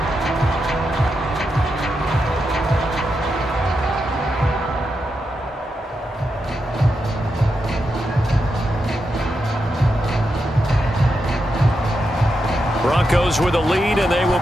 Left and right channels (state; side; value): normal; both; correlation 0.86